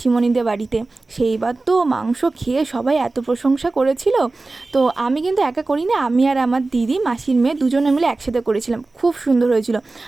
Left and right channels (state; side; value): quieter; left; 3.4 dB